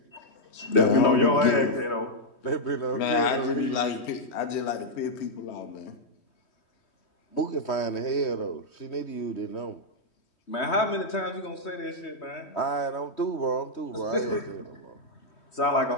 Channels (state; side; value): late; right; 3.2 ms